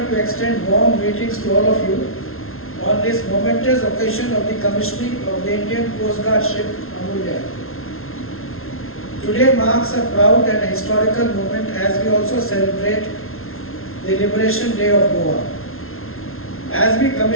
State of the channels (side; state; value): right; late; 0.62 ms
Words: to extend warm greetings to all of you on this momentous occasion of the commissioning of the Indian Coast Guard ship Amulya. Today marks a proud and a historical moment as we also celebrate the Liberation Day of Goa. As we